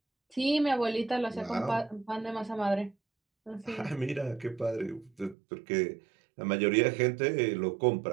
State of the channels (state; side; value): drops out; left; at 5.4 s